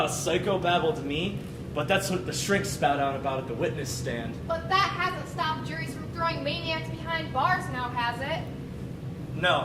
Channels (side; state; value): both; identical; correlation 1.00